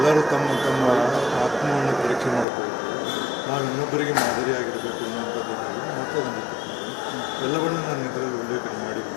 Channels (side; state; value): right; drops out; at 2.5 s